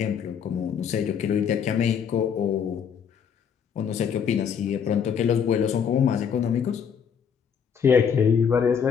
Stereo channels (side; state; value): right; quieter; 7.3 dB